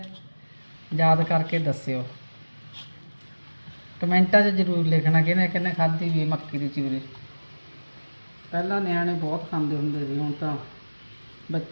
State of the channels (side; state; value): both; inverted; correlation -1.00